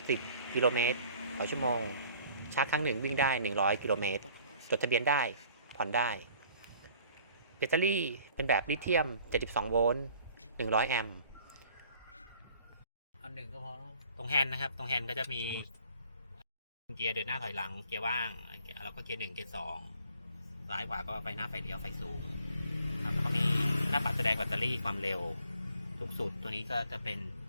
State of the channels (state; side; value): inverted; both; correlation -0.55